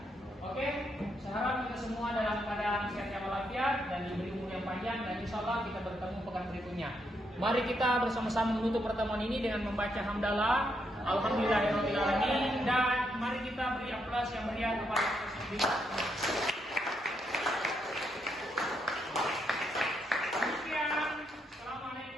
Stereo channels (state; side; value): normal; both; correlation 0.78